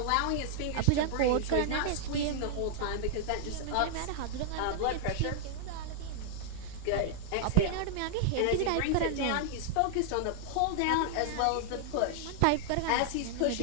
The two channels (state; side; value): different; both; correlation -0.01